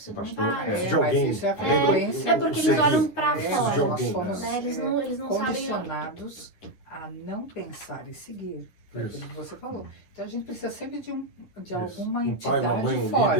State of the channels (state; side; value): late; right; 10 ms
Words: de um pastor, pai. é. De alguém. Mas isso é a Lembra? frequência. É porque O eles seguir. olham pra Precisa fora. de alguém. Nós somos Né? Eles não sabem. condicionados a não pensar e seguir. Foi Isso. aquilo que você falou. Então a gente precisa sempre de Isso. alguma Um entidade pai, uma mãe, um fora.